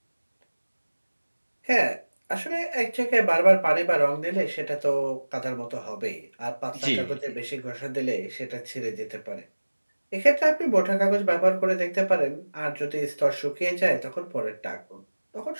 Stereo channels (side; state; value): both; inverted; correlation -1.00